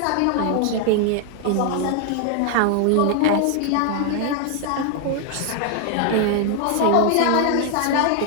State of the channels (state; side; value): different; both; correlation 0.00